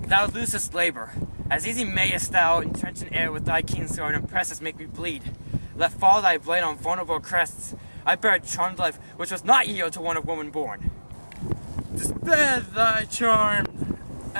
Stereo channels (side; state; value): both; inverted; correlation -1.00